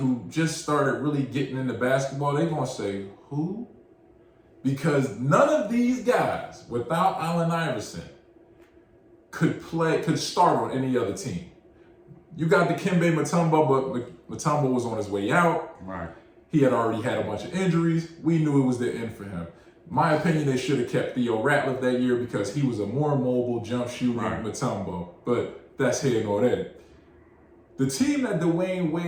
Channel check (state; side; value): identical; both; correlation 1.00